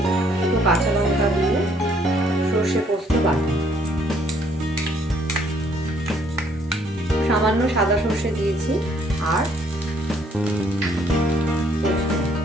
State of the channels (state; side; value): normal; both; correlation 0.66